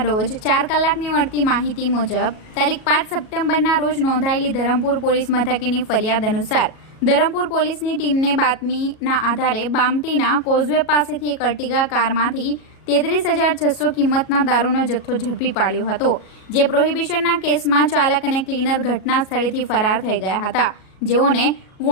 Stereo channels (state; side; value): late; right; 37 ms